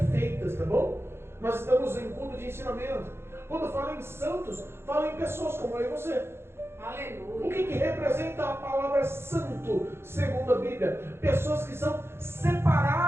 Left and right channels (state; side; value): late; left; 0.12 ms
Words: tá bom? Nós estamos em culto de ensinamento. Quando fala em santos, fala em pessoas como eu e você. Aleluia. O que representa a palavra santo, segundo a Bíblia? Pessoas que são